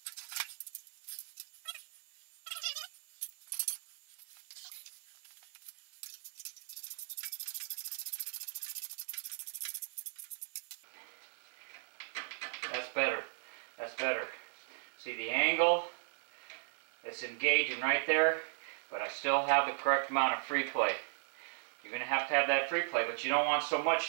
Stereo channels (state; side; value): silent; left; 53 dB below the other